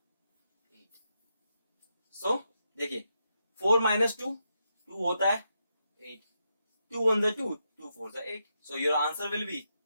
सो देखिए 4 - 2 2 होता है 8, 2 1 जा 2, 2 4 जा 8। So your answer will be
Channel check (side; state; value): both; inverted; correlation -0.83